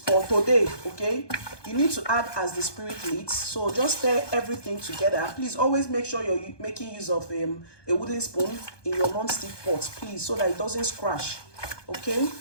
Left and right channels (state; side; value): late; right; 1.2 ms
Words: for today, okay? You need to add as the spirit leads. So just stir everything together. Please always make sure you're making use of a wooden spoon in your non-stick pot, please, so that it doesn't scratch, okay?